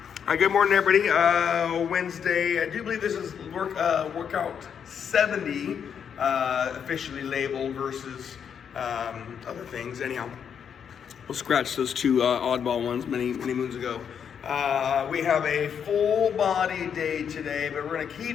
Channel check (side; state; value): right; quieter; 7.7 dB